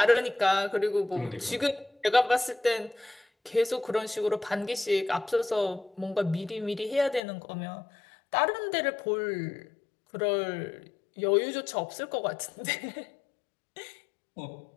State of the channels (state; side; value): drops out; right; at 7.2 s